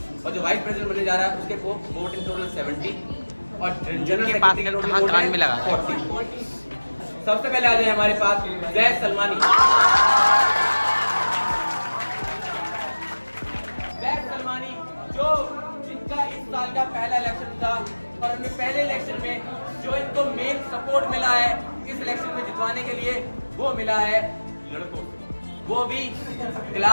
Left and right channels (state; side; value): inverted; both; correlation -1.00